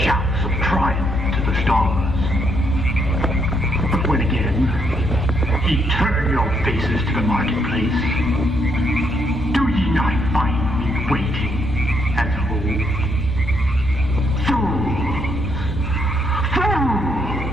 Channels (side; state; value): both; normal; correlation 0.74